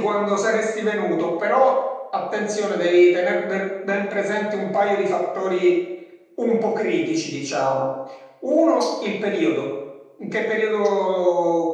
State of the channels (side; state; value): both; identical; correlation 1.00